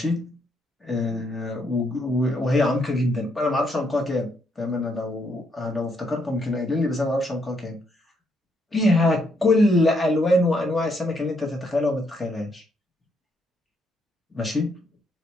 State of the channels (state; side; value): normal; both; correlation 0.75